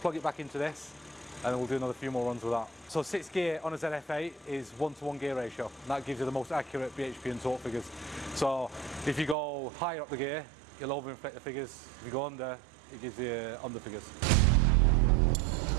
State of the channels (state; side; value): drops out; left; at 9.3 s